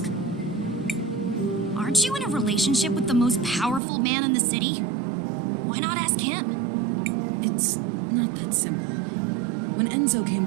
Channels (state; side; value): drops out; left; at 3.8 s